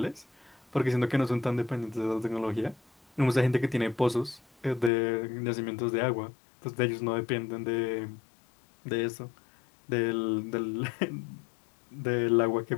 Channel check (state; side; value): drops out; right; at 4.9 s